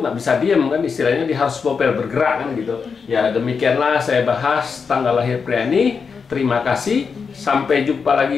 nggak bisa diem kan, istilahnya dia harus bopel bergerak kan gitu. Ya demikianlah saya bahas tanggal lahir pria ini. Terima kasih, sampai jumpa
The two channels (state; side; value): quieter; right; 5.6 dB